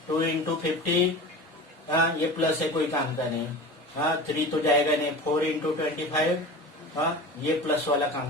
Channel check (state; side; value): normal; both; correlation 0.33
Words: 2 इंटू 50, ये प्लस है, कोई काम का नहीं. 3 तो जाएगा नहीं. 4 इंटू 25, ये प्लस वाला